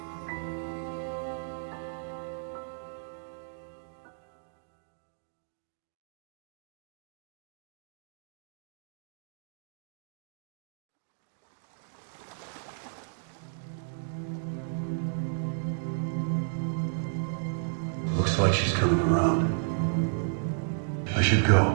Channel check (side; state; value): left; silent; digital silence